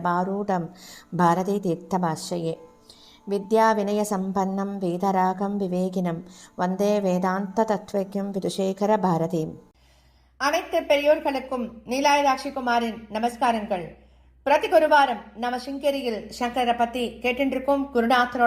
பாரதி தீர்த்தமாஸ்ரயே. வித்யா வினய சம்பன்னம் வேதராகம் விவேகினம் வந்தே வேதாந்த தத்வக்யம் விதுஷேகர பாரதீம். அனைத்து பெரியோர்களுக்கும் நீலாயதாட்சி குமாரின் நமஸ்காரங்கள். பிரதி குருவாரம் நம்ம சிங்கேரியில் சங்கரை பத்தி கேட்டிருக்கும்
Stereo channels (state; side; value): identical; both; correlation 1.00